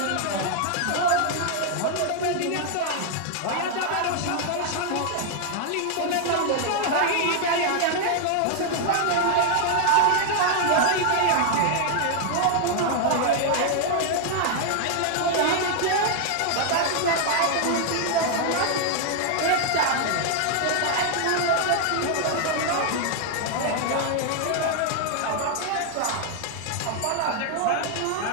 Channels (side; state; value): both; different; correlation 0.00